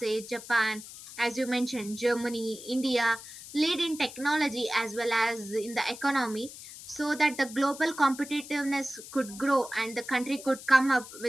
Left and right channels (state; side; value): noise; left; hiss, 14 dB below the sound